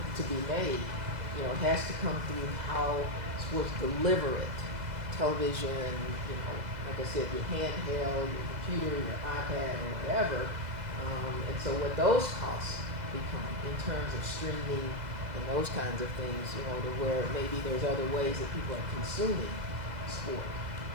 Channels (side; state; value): left; late; 2.0 ms